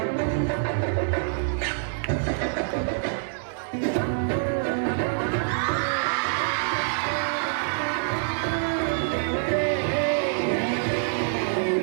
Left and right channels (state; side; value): silent; left; 61 dB below the other